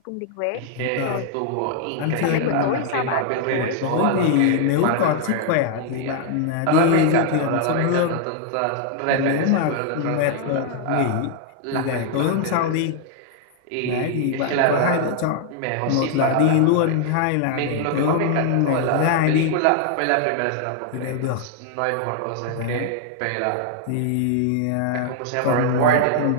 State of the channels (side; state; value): both; different; correlation 0.00